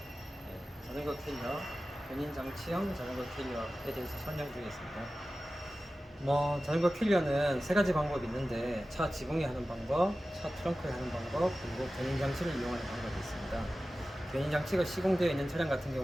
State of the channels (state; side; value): normal; both; correlation 0.95